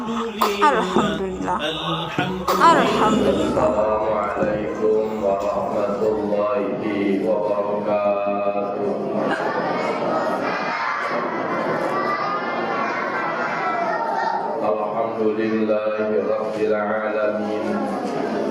Alhamdulillah. Assalamualaikum warahmatullahi wabarakatuh. Alhamdulillahi rabbil alamin.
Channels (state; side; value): identical; both; correlation 1.00